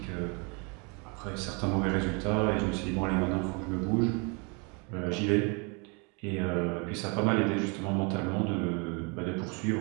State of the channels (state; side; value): quieter; left; 32.4 dB